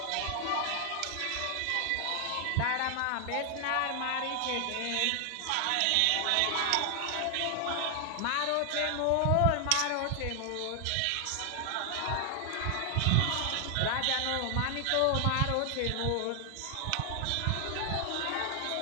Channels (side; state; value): both; different; correlation 0.00